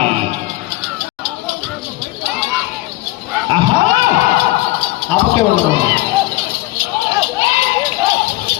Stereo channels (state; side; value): quieter; right; 19.2 dB